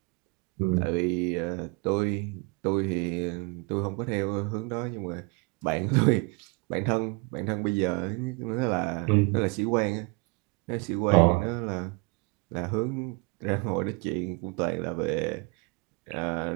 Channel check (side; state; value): left; quieter; 28.4 dB